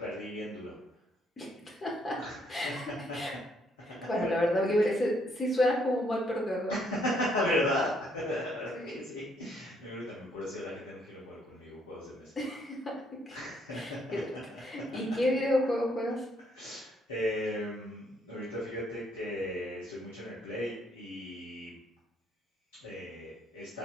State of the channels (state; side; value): normal; both; correlation 0.70